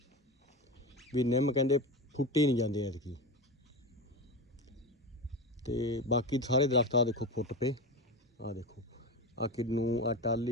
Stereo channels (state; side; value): normal; both; correlation 0.23